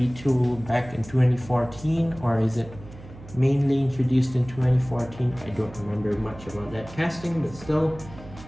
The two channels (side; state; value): right; noise; hum, 17 dB below the sound